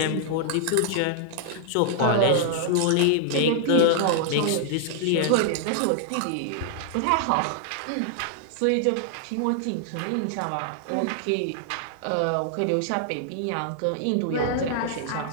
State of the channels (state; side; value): different; both; correlation -0.01